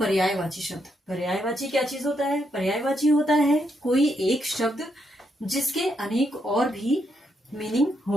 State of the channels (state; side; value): normal; both; correlation 0.78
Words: शब्द। पर्यायवाची क्या चीज होता है? पर्यायवाची होता है कोई एक शब्द जिसके अनेक और भी मीनिंग